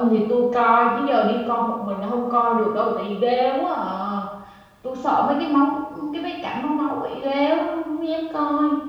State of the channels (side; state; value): both; identical; correlation 1.00